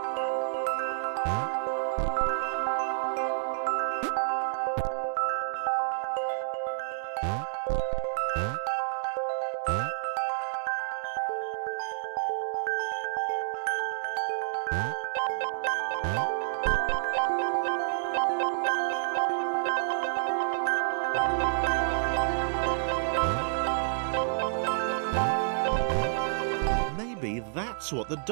Maybe that's what the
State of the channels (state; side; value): silent; left; digital silence